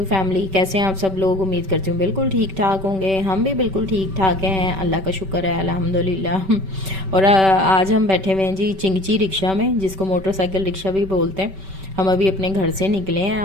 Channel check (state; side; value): late; left; 5.2 ms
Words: family, कैसे हैं आप सब लोग। उम्मीद करती हूँ बिल्कुल ठीक ठाक होंगे। हम भी बिल्कुल ठीक ठाक हैं, अल्लाह का शुक्र है, अल्हम्दुलिल्लाह। और आज हम बैठे हुए हैं जी चिंगची रिक्शा में, जिसको मोटरसाइकिल रिक्शा भी बोलते हैं। हम अभी अपने घर से निकले हैं